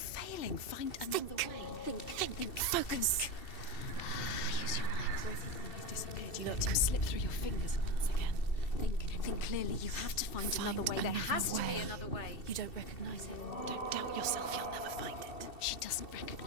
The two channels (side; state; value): right; late; 2.7 ms